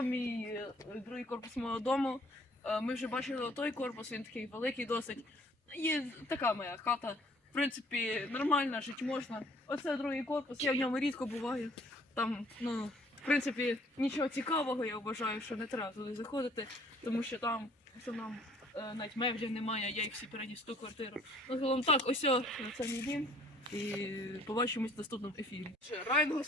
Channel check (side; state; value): both; normal; correlation 0.58